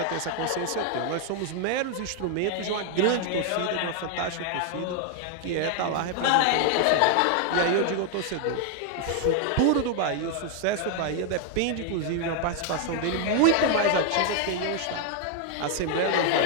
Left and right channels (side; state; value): both; different; correlation 0.00